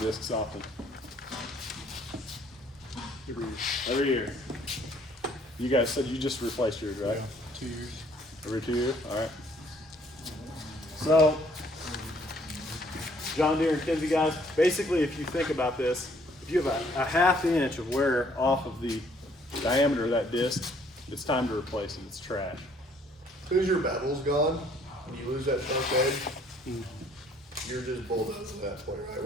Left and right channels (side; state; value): both; normal; correlation 0.62